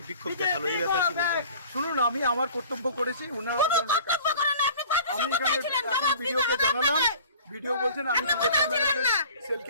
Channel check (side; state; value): both; inverted; correlation -0.47